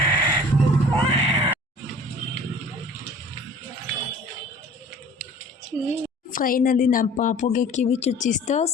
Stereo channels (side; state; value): both; normal; correlation 0.47